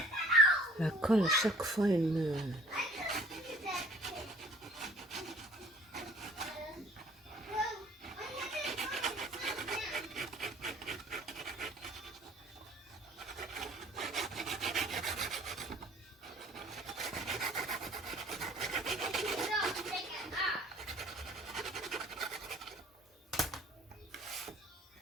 La colle, à chaque fois, elle me...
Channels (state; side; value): normal; both; correlation 0.54